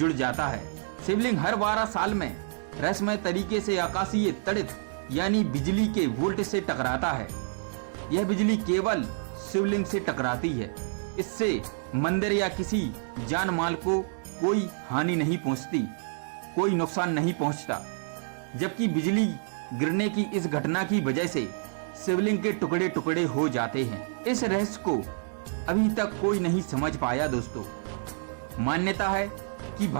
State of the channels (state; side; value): silent; left; 59 dB below the other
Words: जाता है। शिवलिंग हर 12 साल में रहस्यमय तरीके से आकाशीय तड़ित यानी बिजली के वोल्ट से टकराता है। यह बिजली केवल शिवलिंग से टकराती है, इससे मंदिर या किसी जान माल को कोई हानि नहीं पहुंचती, कोई नुकसान नहीं पहुंचता। जबकि बिजली गिरने की इस घटना की वजह से शिवलिंग के टुकड़े टुकड़े हो जाते हैं। इस रहस्य को अभी तक कोई नहीं समझ पाया। दोस्तों, मान्यता है कि